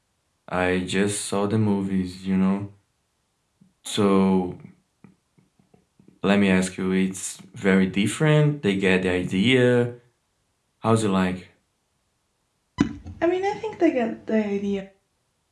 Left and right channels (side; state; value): both; identical; correlation 1.00